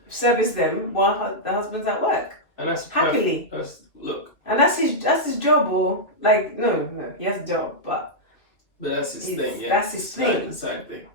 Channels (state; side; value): late; right; 2.4 ms